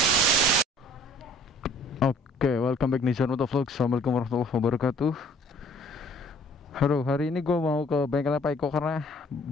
Oke, welcome back Nizar Motovlog. Assalamualaikum warahmatullahi wabarakatuh. Halo, hari ini gue mau ke bengkelnya Pak Iko karena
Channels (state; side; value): normal; both; correlation 0.55